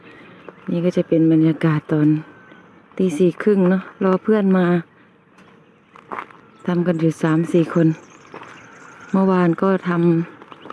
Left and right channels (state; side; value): identical; both; correlation 1.00